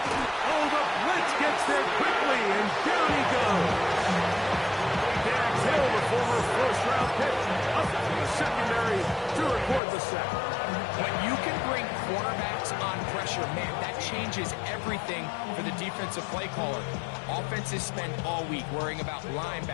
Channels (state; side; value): drops out; right; at 9.8 s